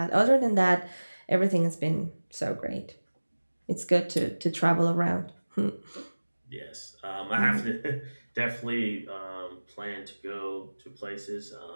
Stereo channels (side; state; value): both; inverted; correlation -1.00